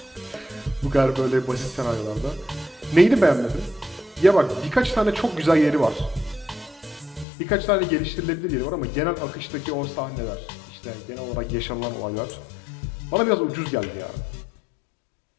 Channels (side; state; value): right; drops out; at 7.2 s